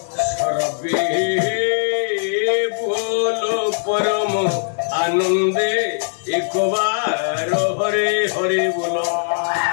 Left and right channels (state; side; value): silent; right; 61 dB below the other